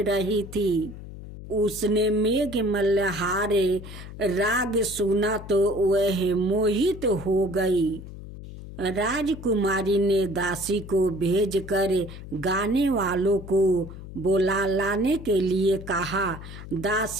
रही थी। उसने मेघ मल्हारे राग सुना तो वह मोहित हो गई। राजकुमारी ने दासी को भेजकर गाने वालों को बुला लाने के लिए कहा।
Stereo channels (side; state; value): left; noise; hum, 13 dB below the sound